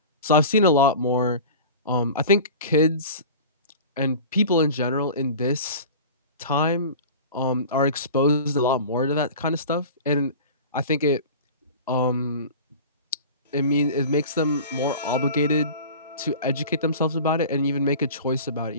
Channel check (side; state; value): both; inverted; correlation -0.37